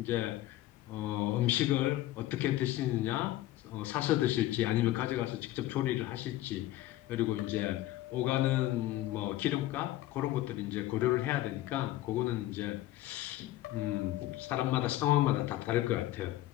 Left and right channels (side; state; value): right; quieter; 15.4 dB